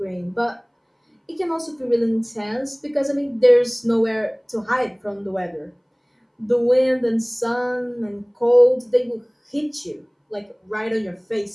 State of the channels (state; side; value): identical; both; correlation 1.00